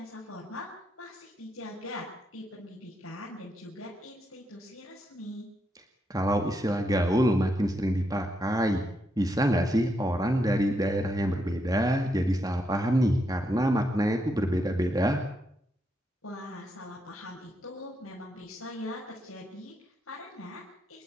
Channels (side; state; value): both; normal; correlation 0.81